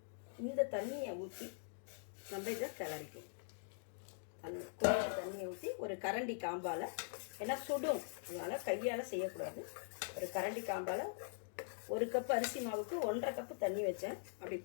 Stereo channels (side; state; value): right; silent; digital silence